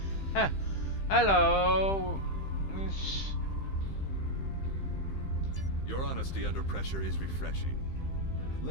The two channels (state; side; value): late; right; 15 ms